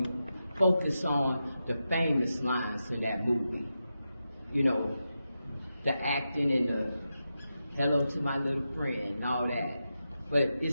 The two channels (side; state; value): both; inverted; correlation -0.89